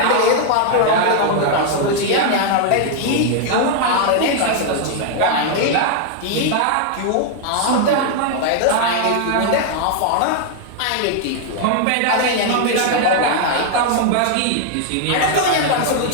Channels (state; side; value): different; both; correlation 0.00